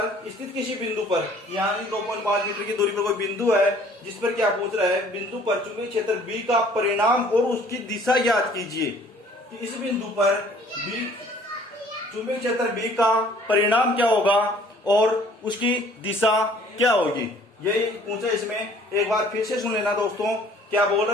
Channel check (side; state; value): both; normal; correlation 0.55